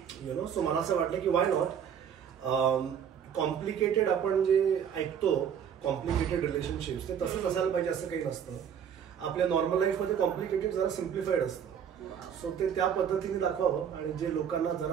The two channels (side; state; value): left; quieter; 8.2 dB